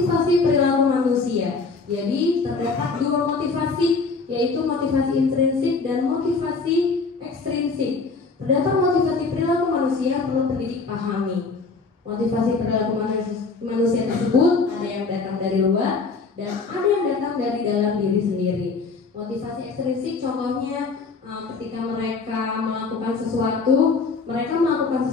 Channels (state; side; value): quieter; right; 4.4 dB